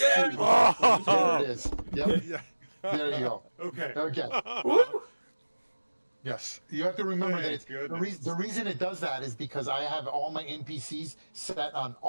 Oh! it is. Yep. Yeah. There you go. Okay. Okay. Yes, you have to remember that Thank it's goodness. the reason it does that is because I have all my NPCs set on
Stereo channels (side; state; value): both; inverted; correlation -1.00